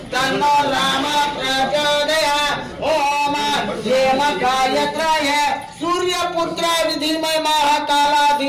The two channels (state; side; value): identical; both; correlation 1.00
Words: तन्नो राम प्रचोदयात् ओम हेम गायत्राय सूर्यपुत्र विधिमय महाकाला